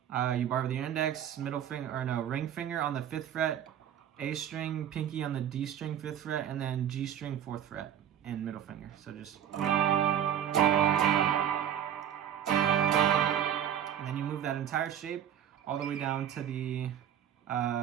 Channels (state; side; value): quieter; left; 9.8 dB